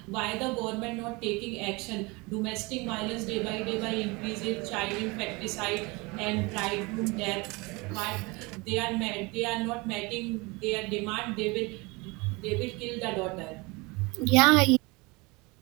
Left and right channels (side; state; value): left; quieter; 25.8 dB